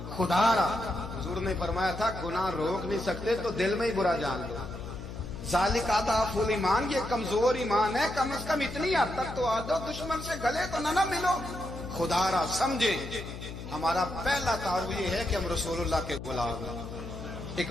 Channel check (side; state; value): left; noise; hum, 10 dB below the sound